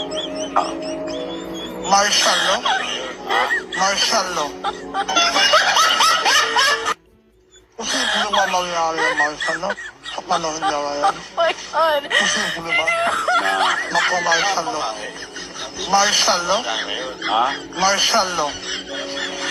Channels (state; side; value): identical; both; correlation 1.00